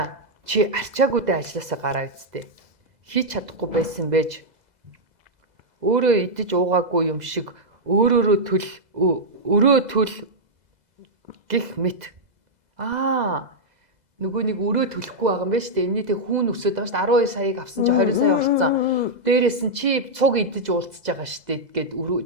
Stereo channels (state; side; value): late; left; 2.0 ms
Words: Чи арчаагүйдээ ажилласаа гараа үсттэй. Хийж чадахгүй байсан байж өөрөө идэж уугаагүй юм шиг өрөө төл гих мэт. Нөгөө нэг өрөө төлөхгүй байгаа юм байна шүү дээ. Энэний тэг хүүн өсөд байгаа шүү дээ. 12 саяыг авсан чи 20 сая болцсон. Дээрээс нь чи цуг идэж уулзж байгаа шүү дээ гэд